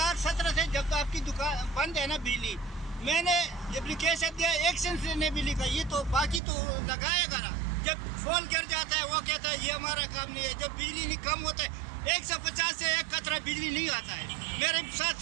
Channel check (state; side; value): drops out; left; at 6.4 s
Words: سے جب آپ کی دکان بند ہے نا بجلی، میں نے اپلیکیشن دیا، ایکشن سے نے بھی لکھا. یہ تو باقی تو لگائے گا نا. جب فون گر جاتا ہے وہ کہتا ہے یہ ہمارا کام نہیں ہے. جب بجلی نہیں کم ہوتا ہے 150 سے 1 قطرہ بجلی نہیں آتا ہے. میرے ساتھ